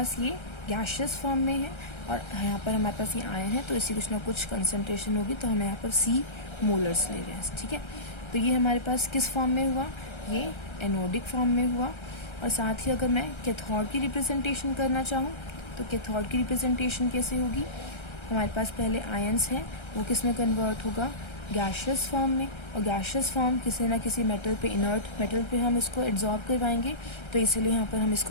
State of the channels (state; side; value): late; right; 1.3 ms